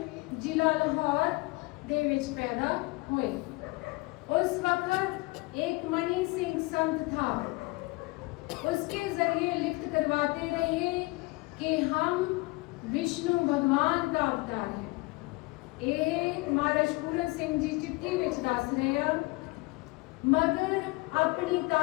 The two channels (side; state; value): right; quieter; 23.8 dB